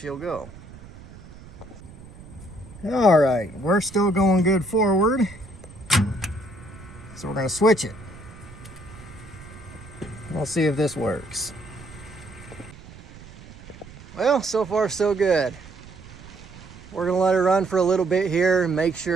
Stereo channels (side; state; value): right; noise; rumble, 18 dB below the sound